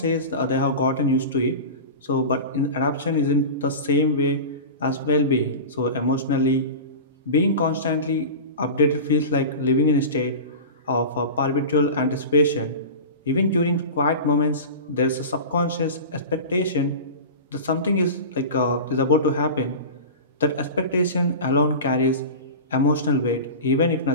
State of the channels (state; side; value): inverted; both; correlation -0.30